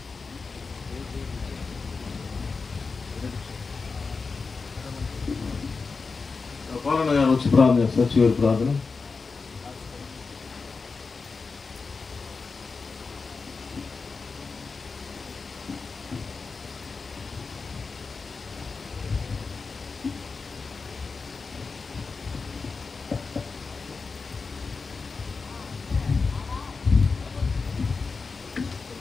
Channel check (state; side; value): quieter; right; 4.5 dB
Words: పాలన గారు వచ్చి ప్రార్థన చేస్తారు. చివరి ప్రార్థన.